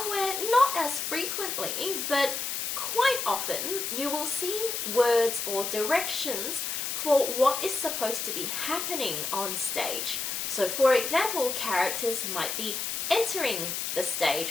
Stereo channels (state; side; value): noise; left; hiss, 2 dB below the sound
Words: not as frequently, but quite often, you will see words or directions for what is supposed to be happening on stage. So for example, characters might be entering the